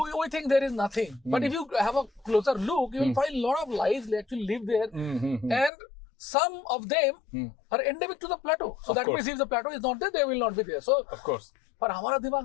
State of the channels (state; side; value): drops out; right; at 5.7 s